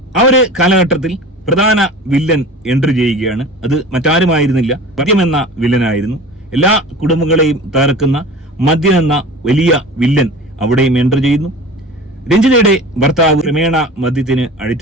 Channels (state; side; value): normal; both; correlation 0.38